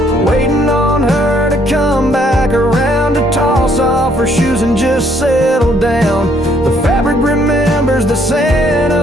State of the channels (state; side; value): normal; both; correlation 0.67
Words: waiting on her to come back around to toss off her shoes and just settle down. The fabric remembers the scent